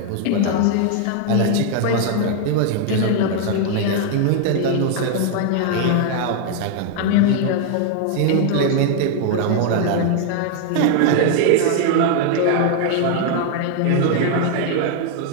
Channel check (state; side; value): different; both; correlation 0.00